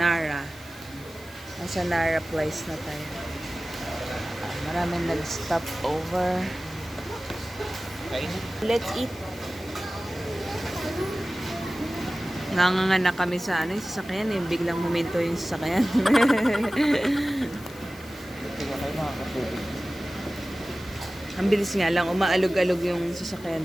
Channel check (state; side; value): noise; left; hiss, 22 dB below the sound